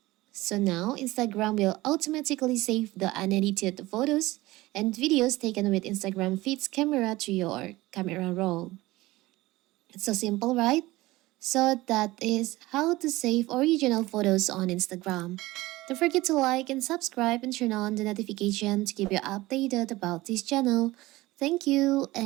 So now Instagram will automatically save the unedited photos and videos taken with Instagram feed's camera to your camera roll. It's so simple, right? So that is how to save original photos on Instagram. Don't forget to like and subscribe and turn on the notification to keep you updated about this channel. Thank you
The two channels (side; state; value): left; quieter; 19.0 dB